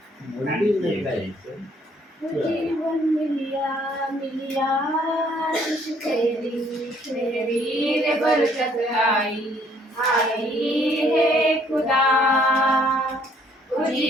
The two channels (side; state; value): both; normal; correlation 0.63